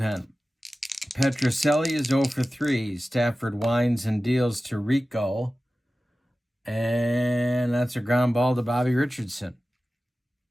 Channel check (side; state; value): both; normal; correlation 0.95